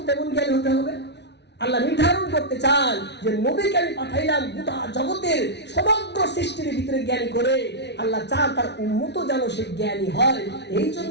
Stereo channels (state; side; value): late; right; 0.50 ms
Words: তেমন জ্ঞানী হতে হবে। আল্লাহ নির্ধারণ করতে চান যে নবীকে আমি পাঠাইলাম গোটা জগতের সমগ্র সৃষ্টির ভিতরে জ্ঞানী করে। আল্লাহ চান তার উম্মত যেন সে জ্ঞানী হয়। এই